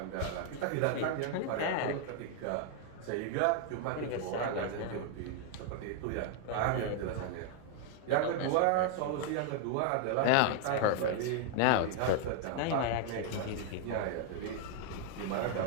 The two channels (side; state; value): both; different; correlation 0.00